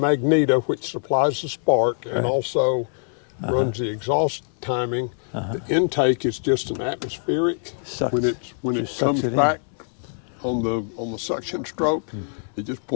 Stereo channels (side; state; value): right; silent; 63 dB below the other